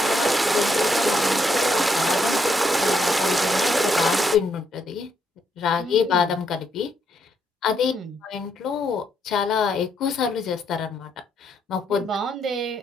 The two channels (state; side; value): normal; both; correlation 0.76